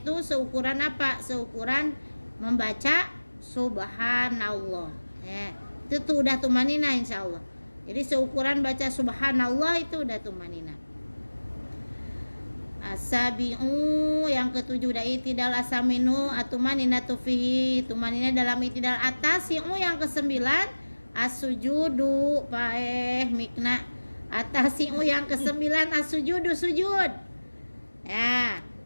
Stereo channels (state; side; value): inverted; both; correlation -1.00